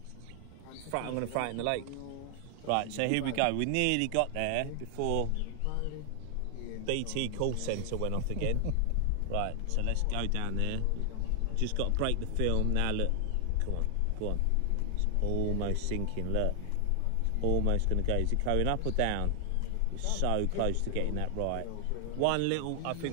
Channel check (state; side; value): different; both; correlation 0.00